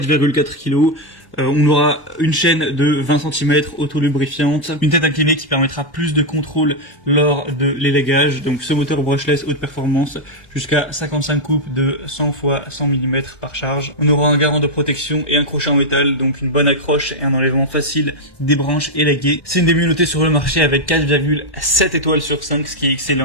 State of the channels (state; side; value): late; right; 1.2 ms